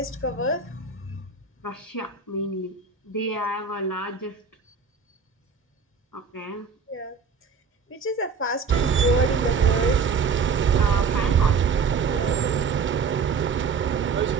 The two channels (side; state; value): left; quieter; 5.3 dB